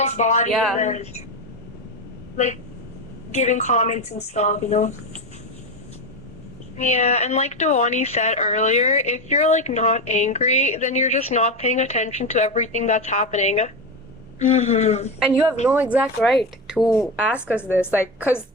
body, Yeah. and then, like giving comments and stuff. Yeah, and like Dewani said earlier, if you're like not angry, then you're just not paying attention to everything that's happening. And you have no exact right to ask us this, like, because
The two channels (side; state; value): both; normal; correlation 0.16